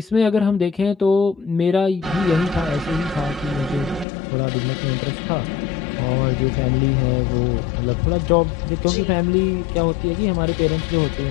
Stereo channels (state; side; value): drops out; right; at 4.0 s